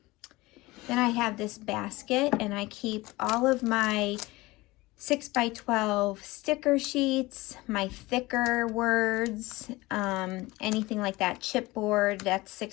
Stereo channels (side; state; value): right; quieter; 20.7 dB